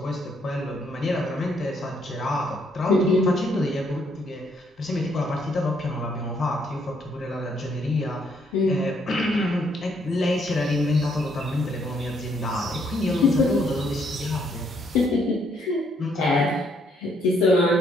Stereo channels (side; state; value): both; normal; correlation 0.70